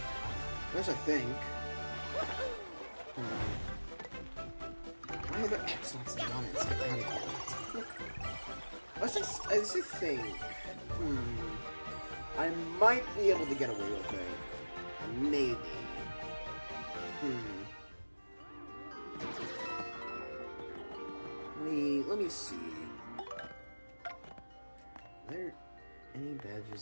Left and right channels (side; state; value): both; inverted; correlation -1.00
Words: There's a thing. Why are there X-Naughts and non-X? I just think. I might be able to get away with it. Maybe. Let me see. Are there any